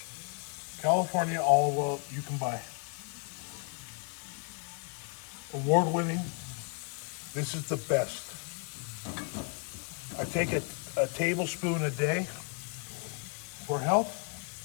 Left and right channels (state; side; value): quieter; right; 38.6 dB